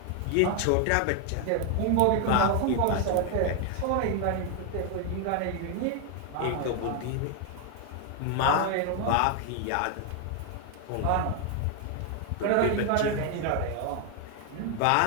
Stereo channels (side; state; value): both; different; correlation 0.01